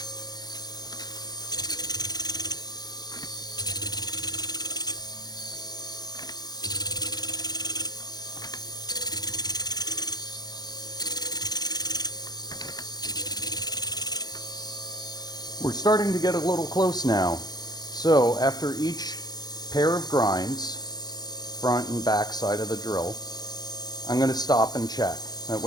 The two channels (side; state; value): right; late; 0.19 ms